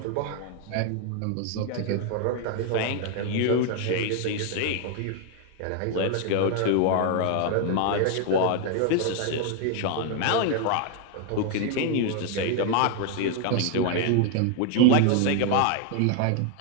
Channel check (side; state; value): both; different; correlation 0.01